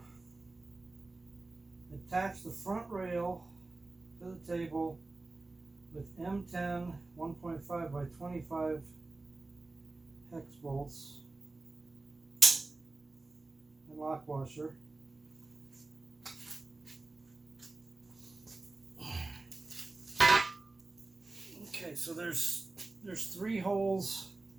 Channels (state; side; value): quieter; left; 3.3 dB